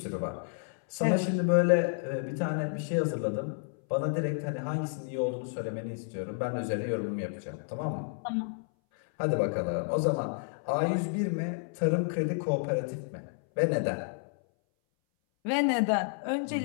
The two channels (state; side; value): silent; right; 57 dB below the other